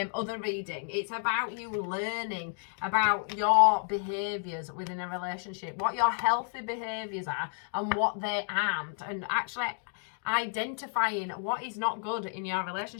other reading, it's about you learning about your behaviours within a relationship, what your healthy behaviours are and what they aren't, and actually identifying what is not good in your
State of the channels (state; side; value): silent; right; 57 dB below the other